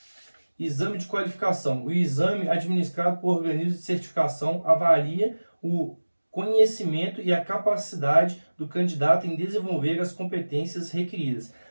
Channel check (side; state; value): both; inverted; correlation -1.00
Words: Exame de qualificação. O exame administrado por organismo de certificação avalia o conhecimento e a capacidade do candidato em desenvolver as competências requeridas.